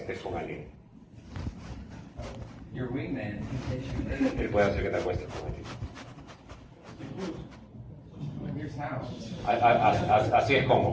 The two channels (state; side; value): identical; both; correlation 1.00